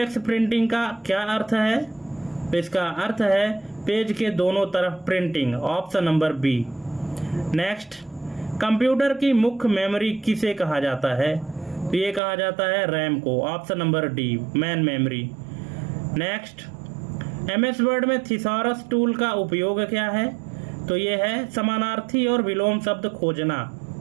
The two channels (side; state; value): left; drops out; at 12.2 s